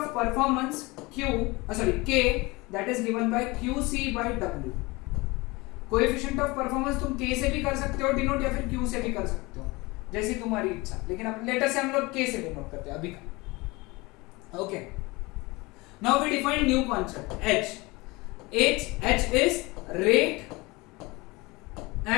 performance K that is given by QC by W। Coefficient of performance तुम K से भी कर सकते हो डिनोट, या फिर Q से भी कर सकते हो, जैसी तुम्हारी इच्छा, लेकिन अब लेटर से हम लोग K से डिनोट करते हैं अभी का। Okay, now we define new concept H is rate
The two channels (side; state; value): right; quieter; 23.5 dB